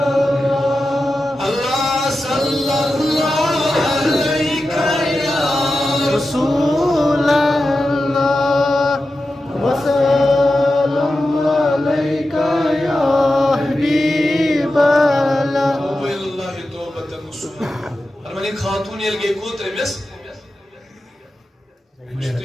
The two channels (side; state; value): both; normal; correlation 0.92